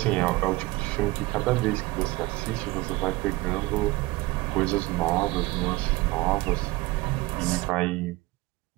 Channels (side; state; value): left; quieter; 20.9 dB